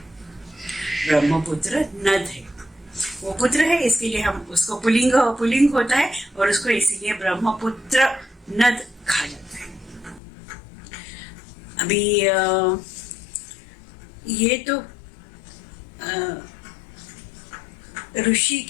ब्रह्मपुत्र नद है, वो पुत्र है, इसके लिए हम उसको पुल्लिंग होता है और उसको इसीलिए ब्रह्मपुत्र नद कहा जाता है। अभी ये तो ऋषि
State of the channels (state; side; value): drops out; right; at 10.2 s